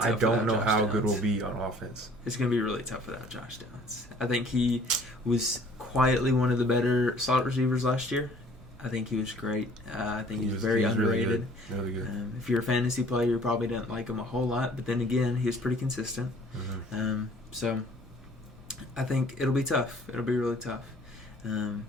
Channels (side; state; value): both; normal; correlation 0.54